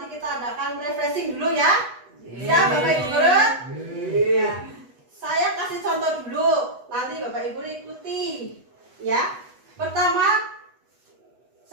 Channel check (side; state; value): left; late; 8.1 ms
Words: kita adakan refreshing dulu ya. Ya Bapak Ibu guru. Ya. Saya kasih contoh dulu, nanti Bapak Ibu ikuti ya. Pertama,